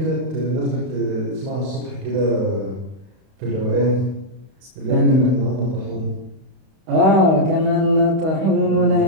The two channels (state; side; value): late; left; 31 ms